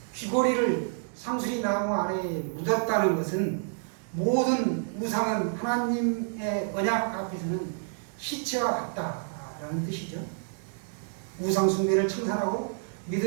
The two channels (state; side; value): silent; left; digital silence